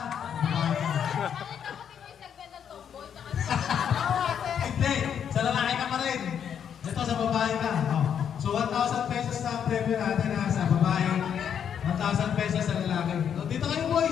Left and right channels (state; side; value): quieter; right; 8.3 dB